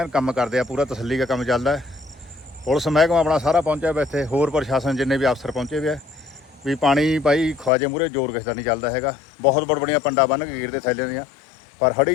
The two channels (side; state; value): right; drops out; at 7.7 s